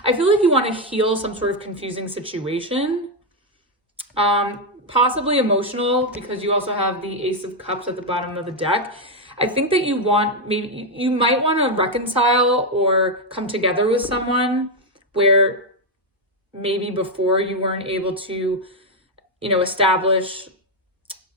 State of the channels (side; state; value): both; normal; correlation 0.03